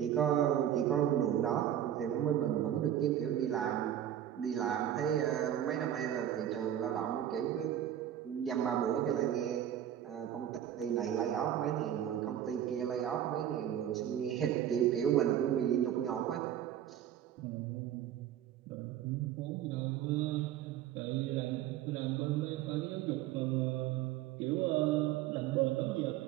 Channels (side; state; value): left; quieter; 10.9 dB